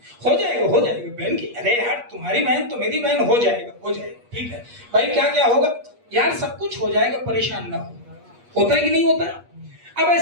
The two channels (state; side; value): late; left; 8.4 ms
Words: हो जाएगा बहन की। अरे यार तुम्हारी बहन तो मेरी बहन, हो जाएगा ठीक है भाई। क्या क्या होगा यार? सब कुछ हो जाएगा, परेशान ना हो। होता है कि नहीं होता? अब